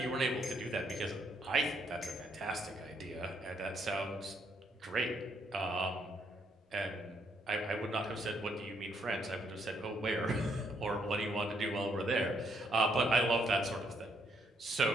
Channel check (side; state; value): both; normal; correlation 0.73